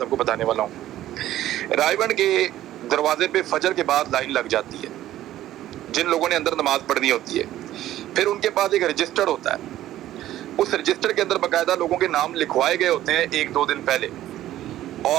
आपको बताने वाला हूँ। रायबंड के दरवाजे पे फजर के बाद लाइन लग जाती है जिन लोगों ने अंदर नमाज पढ़नी होती है। फिर उनके पास एक रजिस्टर होता है, उस रजिस्टर के अंदर बाकायदा लोगों के नाम लिखवाए गए होते हैं 1-2 दिन पहले,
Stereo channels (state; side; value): quieter; left; 13.6 dB